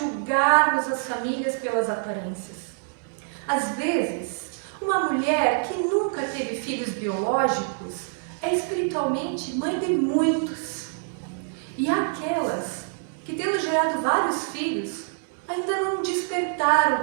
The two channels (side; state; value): left; silent; 61 dB below the other